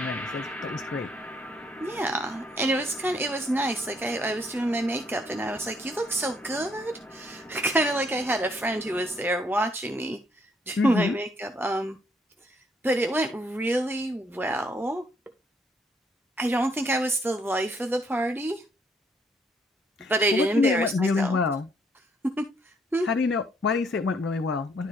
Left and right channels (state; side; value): normal; both; correlation 0.69